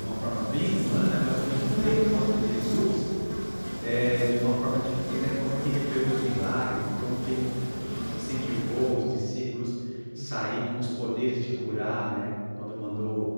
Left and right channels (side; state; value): both; inverted; correlation -1.00